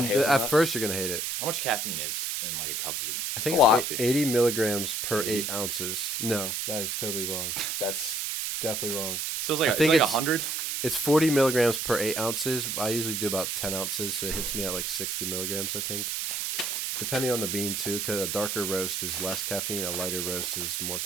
Well, hazelnut? at first you're gonna hate it. How much caffeine is in like a cup of? I think A lot. it's 80 milligrams per 80? 8 ounces. No, that is totally wrong. That's Definitely wrong. So it's like I think like it's- 100. It's 40 milligrams per 8 ounces. I usually do about 10 ounces, so it hits me at like 60 milligrams, I think. Depending on the bean, too, because a darker roast is less caffeine, a lighter roast is more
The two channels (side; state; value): right; noise; hiss, 2 dB below the sound